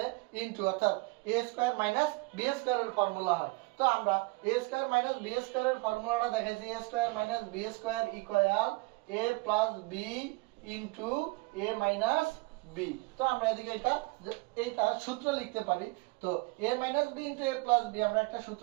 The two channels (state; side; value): quieter; left; 25.5 dB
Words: ইনটু অর্থাৎ a² - b² এর ফর্মুলা হয়। তো আমরা a² - b² এর ফর্মুলাটা দেখাইছি a² - b² = a + b * a - b। তো আমরা এদিকে এইটা সূত্র লিখতে পারি। তো a - b * a + b আমরা একটা